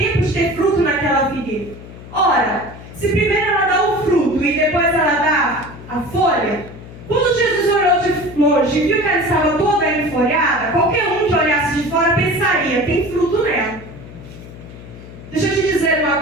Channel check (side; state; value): left; noise; hum, 16 dB below the sound